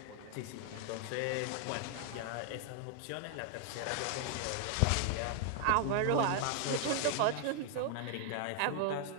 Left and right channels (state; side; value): different; both; correlation 0.00